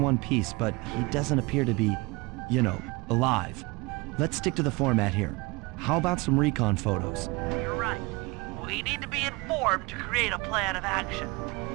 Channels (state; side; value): quieter; left; 25.2 dB